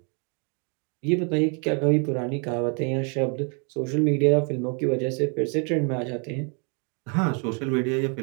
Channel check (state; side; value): quieter; left; 38.1 dB